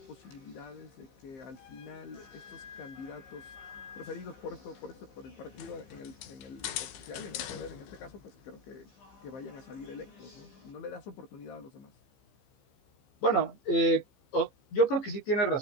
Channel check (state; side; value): late; right; 15 ms